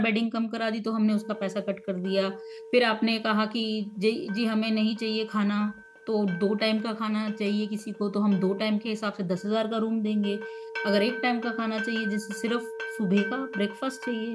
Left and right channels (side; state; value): both; identical; correlation 1.00